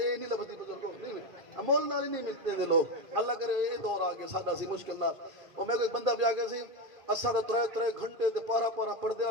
ਨਹੀਂ ਲੱਭਦੀ ਬਜ਼ੁਰਗੋ, ਨਹੀਂ ਅਮੋਲ ਨਾਲ ਹੀ ਨਹੀਂ ਮਿਲਦੇ ਨੇ ਲੋਕ। ਅੱਲਾ ਕਰੇ ਇਹ ਦੌਰ ਆ ਗਿਆ ਸਾਡਾ ਸੀ ਮੁਸ਼ਕਿਲ ਨਾਲ। ਉਹ ਮੇਰੇ ਕੋਲ ਇੱਕ ਬੰਦਾ ਵੀ ਆ ਗਿਆ ਸੀ, ਅਸਾਂ ਤਾਂ 3 ਘੰਟੇ ਤੇ ਪਾਰਾ ਪਾਰਾ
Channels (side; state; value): left; late; 1.5 ms